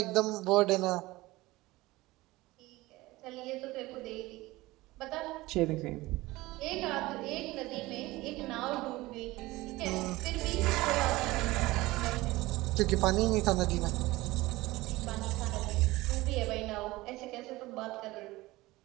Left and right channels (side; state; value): left; quieter; 19.5 dB